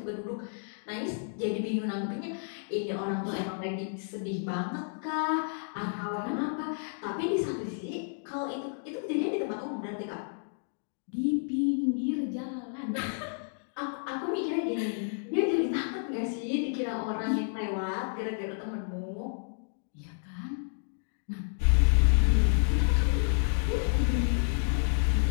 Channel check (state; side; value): silent; right; digital silence